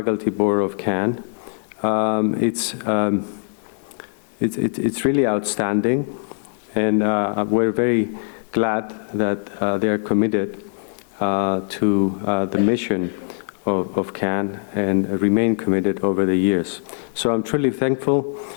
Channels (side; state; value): right; silent; digital silence